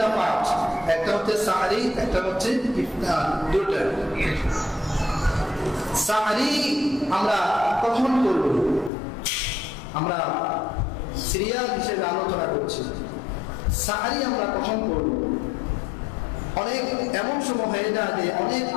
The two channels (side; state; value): right; drops out; at 8.9 s